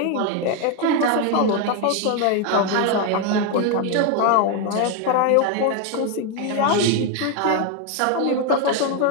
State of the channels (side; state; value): both; different; correlation 0.01